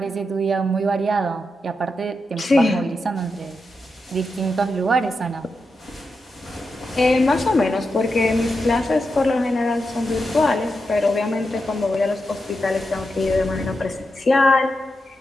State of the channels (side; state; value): both; normal; correlation 0.87